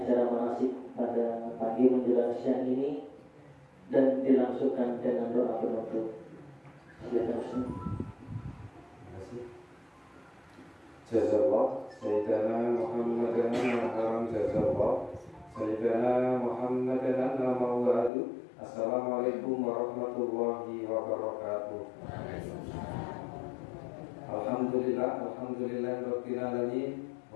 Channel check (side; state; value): right; drops out; at 18.1 s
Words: manasik pada pagi menjelang siang ini dan dilangsungkan dengan doa penutup. Silakan Ustaz. Jazallah Sayyidina Muhammadan Al-Haram Jazallah Sayyidina Muhammadan Al-Mawadu. Assalamualaikum warahmatullahi wabarakatuh. Alhamdulillah Rabbil Alamin